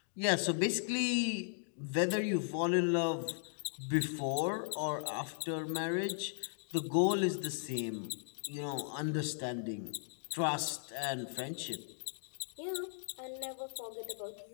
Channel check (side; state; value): right; silent; digital silence